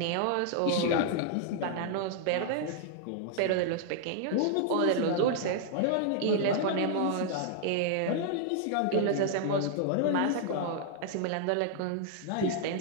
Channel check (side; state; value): both; different; correlation -0.01